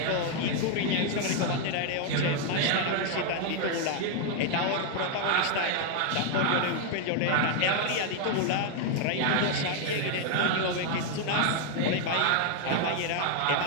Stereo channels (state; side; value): different; both; correlation 0.00